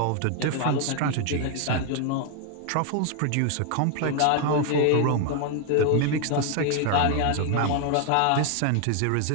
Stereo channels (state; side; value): different; both; correlation 0.00